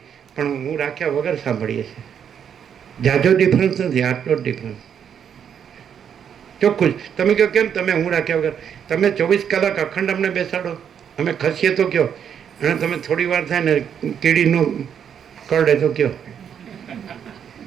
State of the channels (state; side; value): quieter; left; 8.2 dB